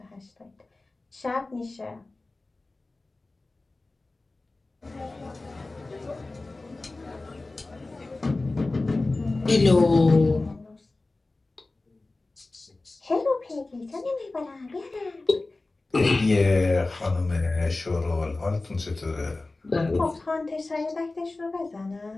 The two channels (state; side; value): quieter; right; 3.2 dB